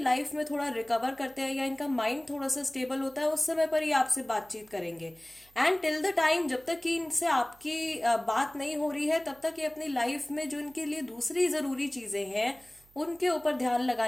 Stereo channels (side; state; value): right; noise; hum, 29 dB below the sound